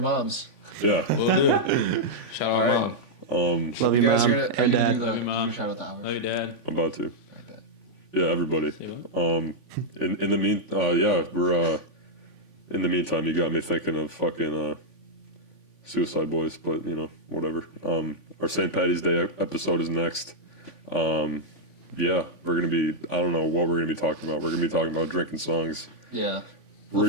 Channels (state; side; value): late; right; 3.5 ms